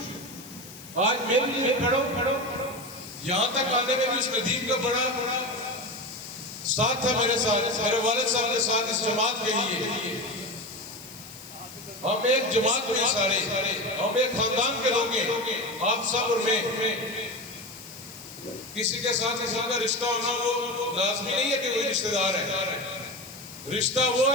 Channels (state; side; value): noise; left; hiss, 17 dB below the sound